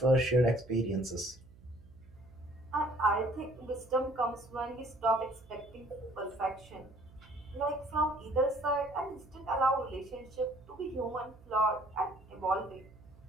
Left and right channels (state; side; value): noise; right; hum, 23 dB below the sound